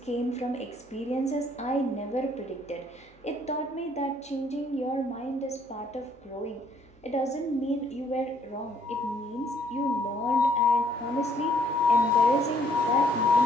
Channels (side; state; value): both; normal; correlation 0.65